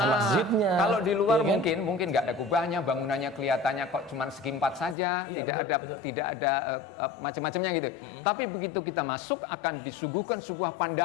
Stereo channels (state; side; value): drops out; right; at 5.0 s